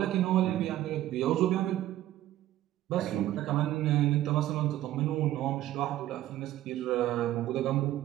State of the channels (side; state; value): left; quieter; 13.9 dB